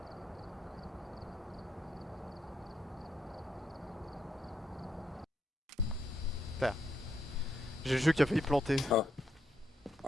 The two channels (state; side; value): normal; both; correlation 0.79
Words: Putain. J'ai le jeu qui a failli planter.